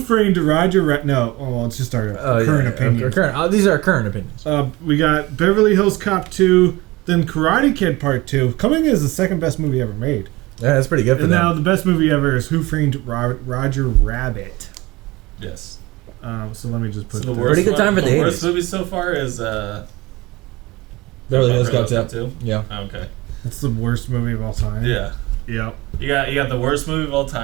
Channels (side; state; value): left; quieter; 21.3 dB